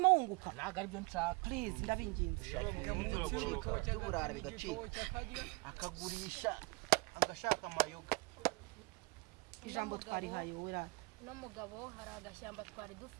wunguka ntabwo aribyo nshaka please ndabinginze by'uburara bigacika akagurisha agashaka amayoga ijambo twarihaye wowe rata n'umugabo hari agashyamba twari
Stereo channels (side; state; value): left; quieter; 26.7 dB